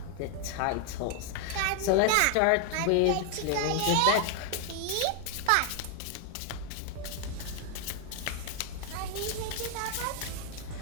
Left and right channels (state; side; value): different; both; correlation 0.00